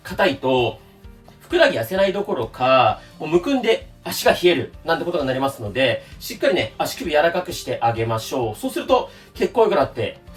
硬いと、ふくらはぎ痩せないどころか、もうむくんで足が冷えるなんてことがなりますので、しっかりね、足首柔らかくしてあげましょう。そうすると、血行良くなって、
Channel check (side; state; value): both; identical; correlation 1.00